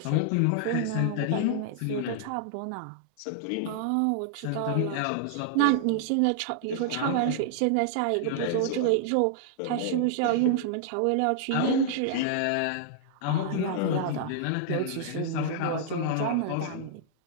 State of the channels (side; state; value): both; different; correlation -0.01